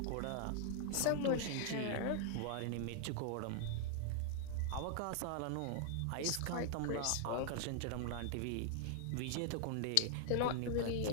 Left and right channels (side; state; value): both; different; correlation 0.00